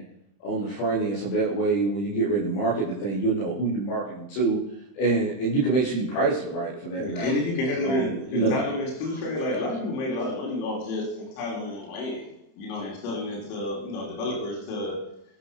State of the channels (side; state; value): right; late; 31 ms